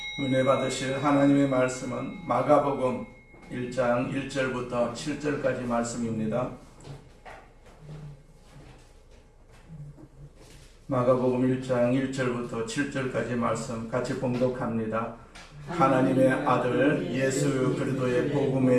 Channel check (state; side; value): identical; both; correlation 1.00